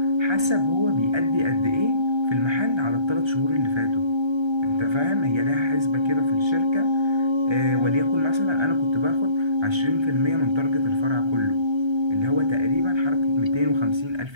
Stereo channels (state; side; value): late; left; 1.3 ms